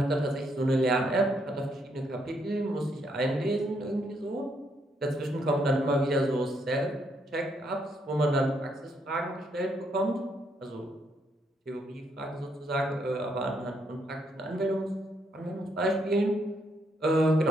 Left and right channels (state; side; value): normal; both; correlation 0.74